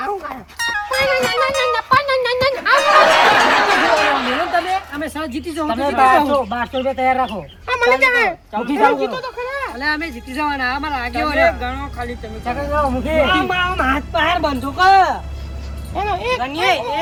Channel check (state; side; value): identical; both; correlation 1.00